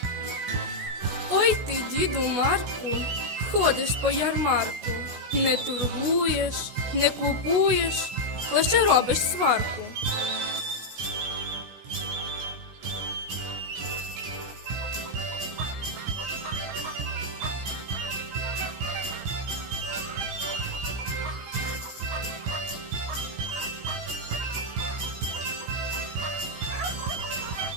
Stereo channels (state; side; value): late; left; 16 ms